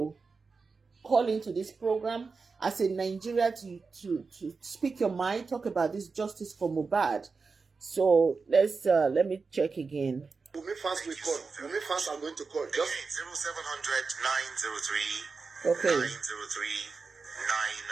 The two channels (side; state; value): left; quieter; 4.6 dB